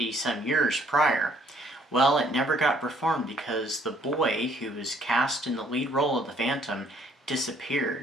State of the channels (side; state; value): both; normal; correlation 0.63